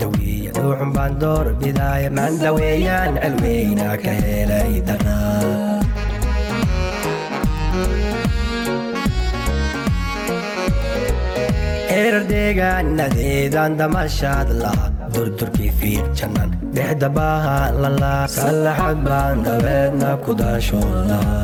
dawiya dhuuxun baan door bidaaya maan daweeyaan cilweyna ka helay daraa erar deegaanadeedaan damashaad laha durdurkii fiir jannan dhexda baahaan lalaa sallaxad baan dabeedna ku daashooda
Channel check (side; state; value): both; identical; correlation 1.00